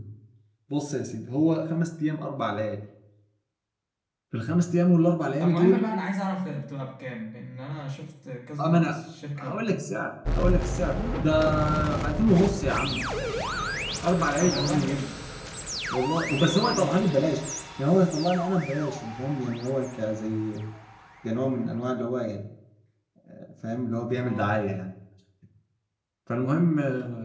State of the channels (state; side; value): identical; both; correlation 1.00